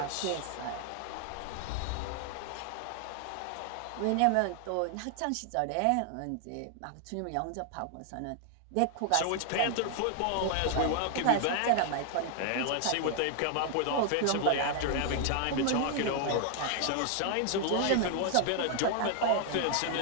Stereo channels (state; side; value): different; both; correlation 0.00